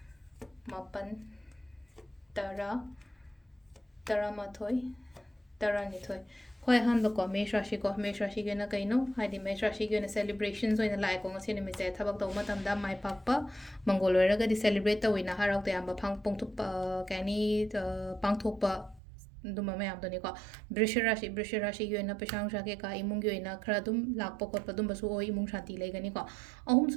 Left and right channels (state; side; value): drops out; left; at 19.0 s